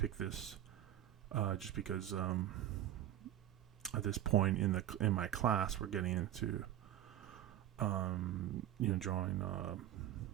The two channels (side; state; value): left; quieter; 12.2 dB